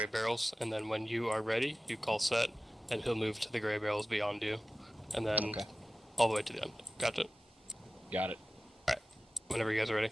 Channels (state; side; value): normal; both; correlation 0.95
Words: barrels, and then when you are ready, you call set, and he'll move to the gray barrels beyond you, and then all the way to the end. Gotcha? Got it. Alright, whenever you guys are ready.